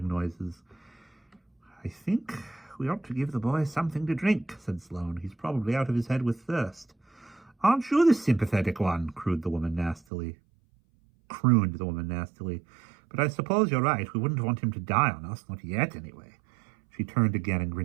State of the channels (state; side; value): drops out; left; at 10.0 s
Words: noises. "I think we ought to give the boy something to drink," said Sloane. "He's probably out of his head with thirst." "Aren't you the sympathetic one?" crooned the woman nastily. "But I suppose you're right. We wouldn't want him to die on us, not yet, anyway." She turned again and